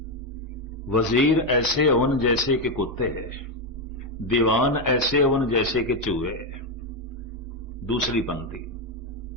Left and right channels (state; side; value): normal; both; correlation 0.06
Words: वजीर ऐसे होन जैसे कि कुत्ते, दीवान ऐसे होन जैसे कि चूहे। दूसरी पंक्ति,